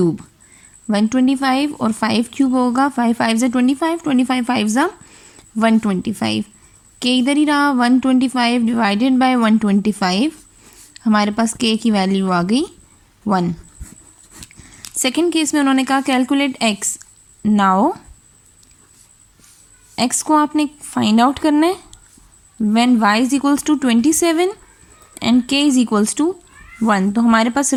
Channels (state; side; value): identical; both; correlation 1.00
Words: 125 और 5 क्यूब होगा, 5 5 ज़ा 25, 25 5 ज़ा 125, k इधर ही रहा 125 डिवाइडेड बाय 125, हमारे पास k की वैल्यू आ गई 1। सेकेंड केस में उन्होंने कहा कैलकुलेट x। नाउ x को आपने फाइंड आउट करना है when y is equals to 27 and k is equals to 1। तो हमारे पास